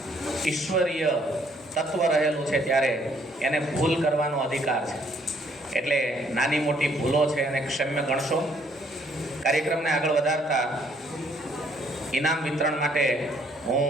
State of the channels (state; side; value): normal; both; correlation 0.66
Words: ઈશ્વરીય તત્વ રહેલું છે ત્યારે એને ભૂલ કરવાનો અધિકાર છે. એટલે નાની મોટી ભૂલો છે એને ક્ષમ્ય ગણશો. કાર્યક્રમને આગળ વધારતા ઇનામ વિતરણ માટે હું